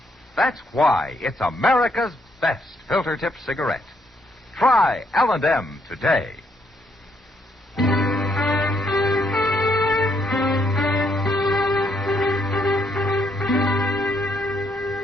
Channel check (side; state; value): both; normal; correlation 0.73